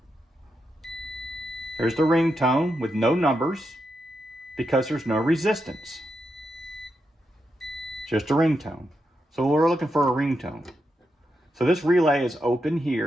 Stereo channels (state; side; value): normal; both; correlation 0.85